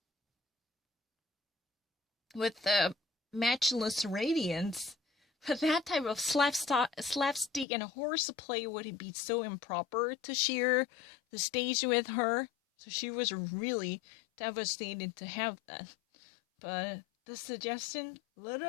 with the matchless radiance, but that type of slapstick and horseplay would be so improper to share the stage with her. So she was really devastated to have that. But the suggestion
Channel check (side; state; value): right; drops out; at 7.7 s